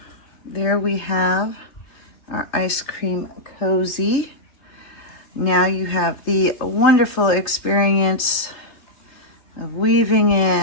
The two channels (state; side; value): late; right; 3.3 ms